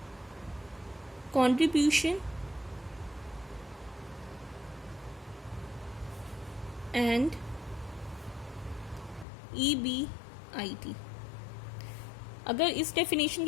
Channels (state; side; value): drops out; right; at 9.2 s